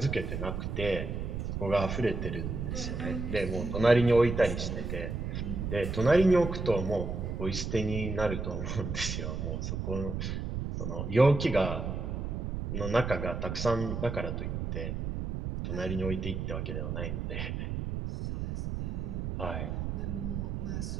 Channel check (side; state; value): right; noise; rumble, 3 dB below the sound